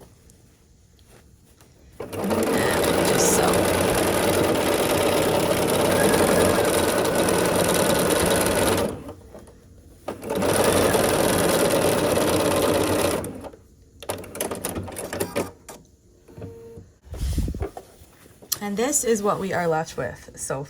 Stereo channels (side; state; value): both; identical; correlation 1.00